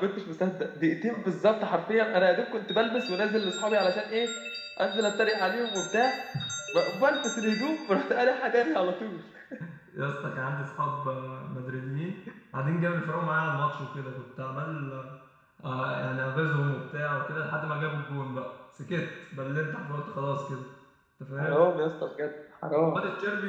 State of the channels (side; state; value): both; identical; correlation 1.00